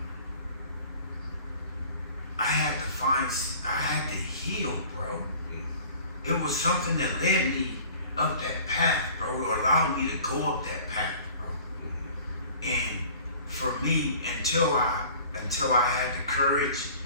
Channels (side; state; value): both; inverted; correlation -0.47